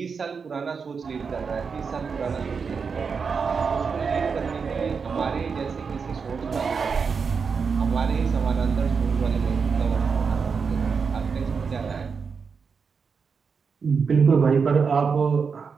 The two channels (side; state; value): left; quieter; 5.6 dB